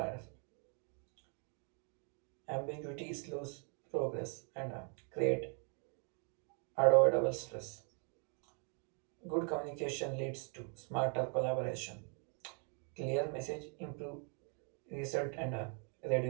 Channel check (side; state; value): left; quieter; 39.4 dB